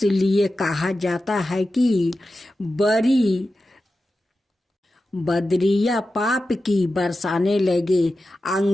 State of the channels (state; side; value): normal; both; correlation 0.93